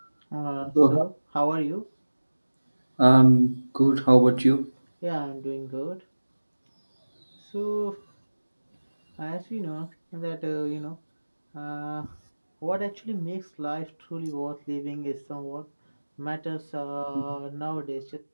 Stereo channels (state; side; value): inverted; both; correlation -1.00